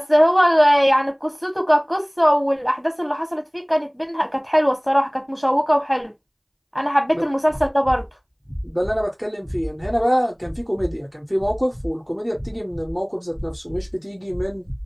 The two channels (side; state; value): both; identical; correlation 1.00